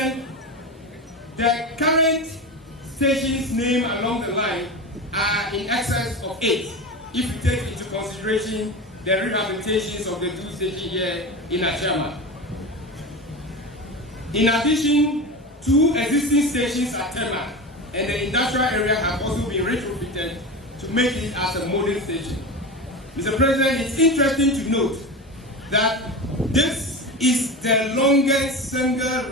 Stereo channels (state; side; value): normal; both; correlation 0.25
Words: the current stations named along the line are in excess of 8, if you take into consideration the rehabilitations of the 2 stations here in Ashama. In addition, 2 existing stations at Tema and the industrial area have also been retrofitted to make it as a modern station. Mr. President, it's interesting to note that this is the longest single